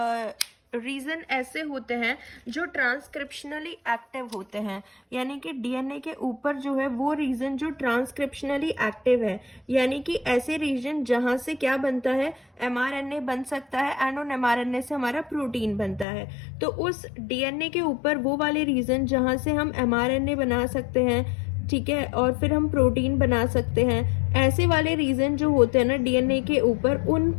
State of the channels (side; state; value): right; drops out; at 16.1 s